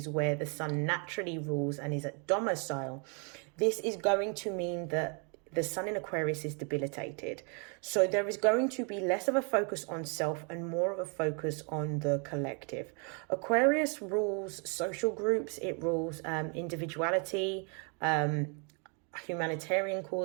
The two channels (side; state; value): left; quieter; 36.6 dB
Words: where the Sun naturally rules and is at domicile, this is going to mean that the Sun in Aquarius is debilitated. So there is going to be less of a focus on self and more of a focus on the collective. Aquarius rules social groups. It rules individuality, humanitarian